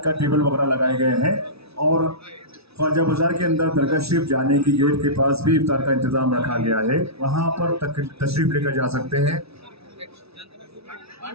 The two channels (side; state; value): left; late; 0.78 ms